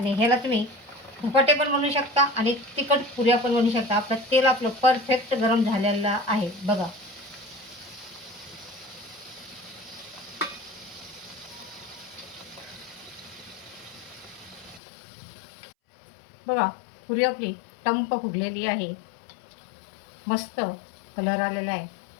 ह्याला तुम्ही धपाटे पण बनवू शकता आणि तिखट पुऱ्या पण बनवू शकता. तेल आपलं परफेक्ट गरम झालेलं आहे. बघा, बघा, पुरी आपली टंप फुगलेली आहे. मस्त कलर आलेला आहे.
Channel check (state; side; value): drops out; right; at 14.8 s